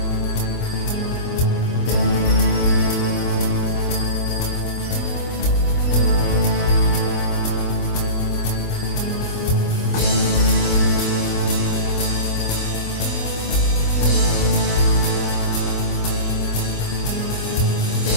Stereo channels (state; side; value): late; right; 25 ms